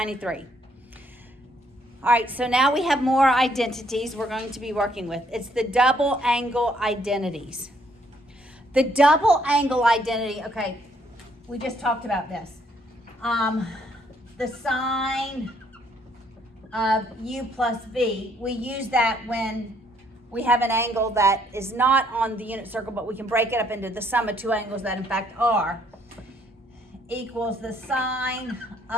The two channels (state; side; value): normal; both; correlation 0.68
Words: All right, so now we have more identities we're going to be working with. It's the double angle identities. The double angle identity, okay, we just talked about this. The sine of u plus v, we use that when we have an angle that is not on the unit circle, but we can break it up into the sum of two angles that in fact are, equals the sine